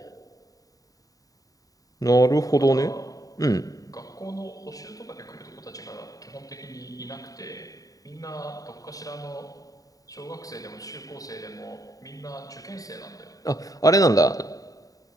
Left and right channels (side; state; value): right; late; 0.17 ms